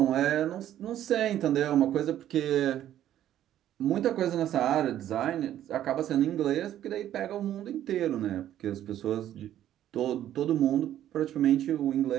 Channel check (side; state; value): left; quieter; 11.8 dB